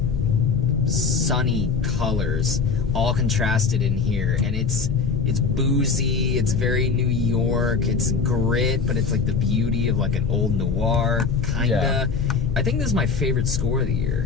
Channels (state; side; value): quieter; right; 5.2 dB